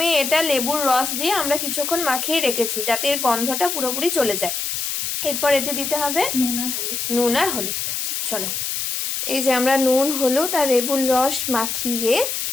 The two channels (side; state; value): left; noise; hiss, 2 dB below the sound